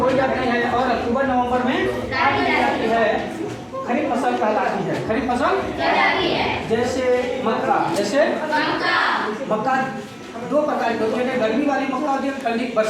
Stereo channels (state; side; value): identical; both; correlation 1.00